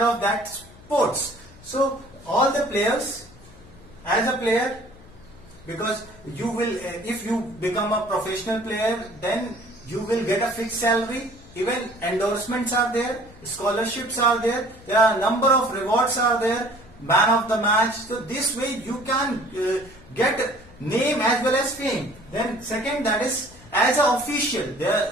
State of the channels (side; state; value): left; noise; hum, 23 dB below the sound